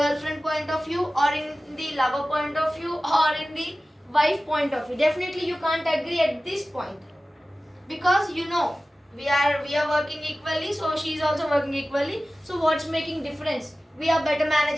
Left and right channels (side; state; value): both; normal; correlation 0.96